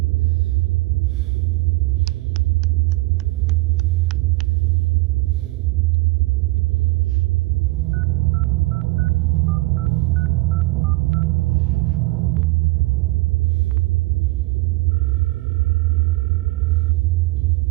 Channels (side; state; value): left; quieter; 22.3 dB